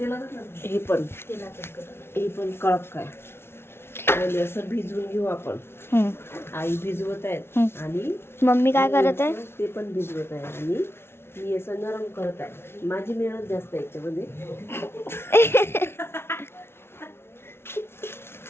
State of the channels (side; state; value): right; late; 0.12 ms